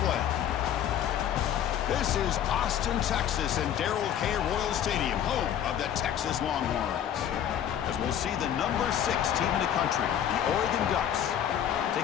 play. This is Austin, Texas, and Darrell K. Royal Stadium, home of the Texas Longhorns. As we'll see the number 6 team in the country, the Oregon Ducks,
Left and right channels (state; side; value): quieter; right; 10.0 dB